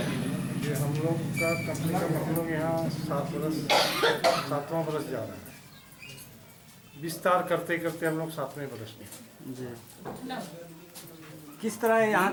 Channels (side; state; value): both; identical; correlation 1.00